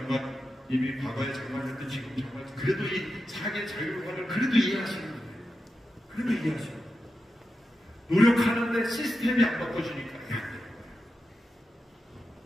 과거에 장관이었던 지금 장관, 그래도 이 사계 자율화를 그래도 이해하시는 거예요. 그래도 이해하시는 거예요. 노력하는데 시스템이 안 바꿔주니까 안 돼요.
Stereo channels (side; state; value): both; normal; correlation 0.90